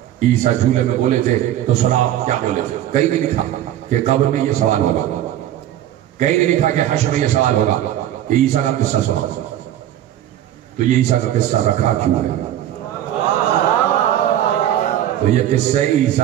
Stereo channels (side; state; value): left; quieter; 12.1 dB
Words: عیسیٰ جھولے میں بولے تھے تو سناؤ کیا بولے تھے؟ کہیں نہیں لکھا کہ قبر میں یہ سوال ہوگا، کہیں نہیں لکھا کہ حشر میں یہ سوال ہوگا کہ عیسیٰ کا قصہ سناؤ۔ تو یہ عیسیٰ کا قصہ رکھا کیوں ہے؟ تو یہ قصہ